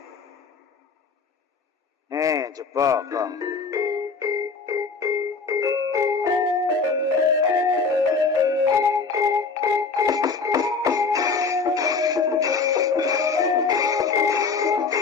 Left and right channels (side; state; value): right; quieter; 4.7 dB